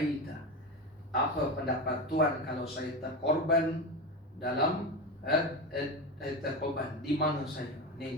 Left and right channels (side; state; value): both; normal; correlation 0.21